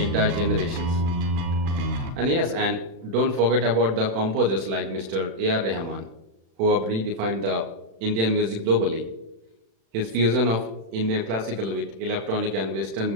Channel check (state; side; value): late; left; 36 ms